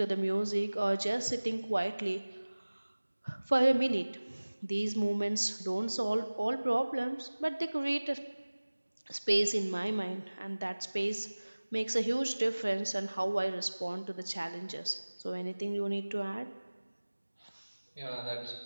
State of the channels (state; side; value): inverted; both; correlation -1.00